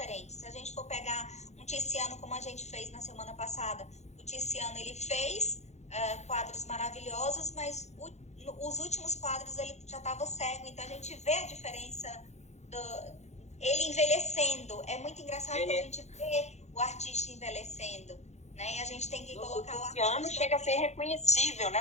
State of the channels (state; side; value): late; right; 0.33 ms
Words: Se a gente for pegar um Tiziano, como a gente fez na semana passada, o Tiziano, ele fez quadros maravilhosos, mas os últimos quadros ele já estava cego. Então, a gente vê a diferença ele envelhecendo. É muito engraçado quando a gente vê o artista envelhecendo. Né? E a gente tem que colocar o Tiziano chega a ser reconhecível,